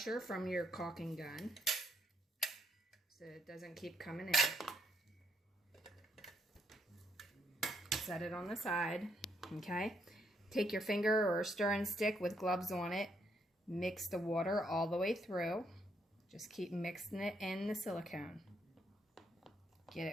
from your caulking gun so it doesn't keep coming in. Set it on the side, okay? Take your finger or a stirring stick with gloves on it. Mix the water all the way through. Just keep mixing it in the silicone. Get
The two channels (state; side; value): normal; both; correlation 0.74